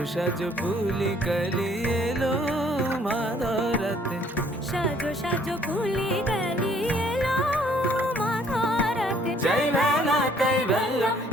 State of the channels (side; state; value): both; normal; correlation 0.61